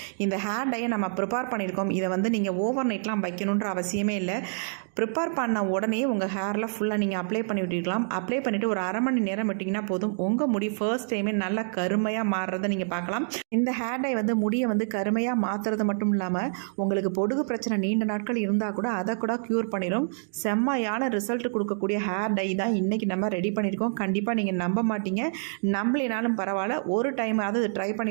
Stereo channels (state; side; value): silent; left; digital silence